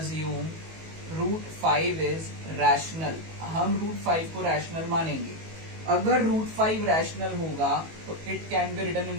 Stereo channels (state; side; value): late; left; 19 ms